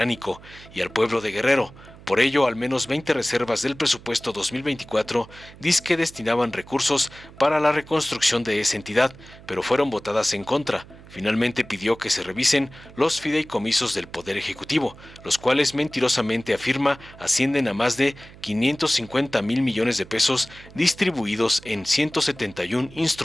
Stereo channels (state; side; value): noise; right; hum, 20 dB below the sound